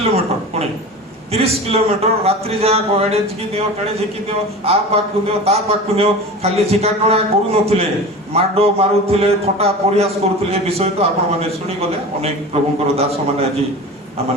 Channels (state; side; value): normal; both; correlation 0.33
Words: ପୁଣି 30 କିଲୋମିଟର ରାତ୍ରି ଯାକ ଏଣେ ଝିକି ଦିଅ ତେଣେ ଝିକି ଦିଅ, ଆ ପାଖକୁ ଦିଅ ତା ପାଖକୁ ଦିଅ, ଖାଲି ଝିକାଟଣା କରୁନଥିଲେ, ମାଡ ମାରୁଥିଲେ, ଥଟ୍ଟା ପରିହାସ କରୁଥିଲେ। ଏ ବିଷୟ ତ ଆପଣମାନେ ଶୁଣିଗଲେ, ଅନେକ ପ୍ରଭୁଙ୍କର ଦାସ ମାନେ ଆଜି